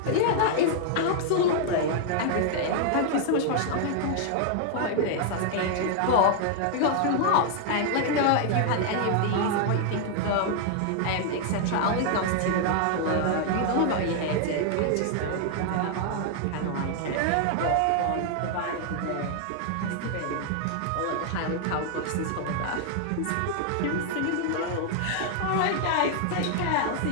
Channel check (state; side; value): different; both; correlation 0.00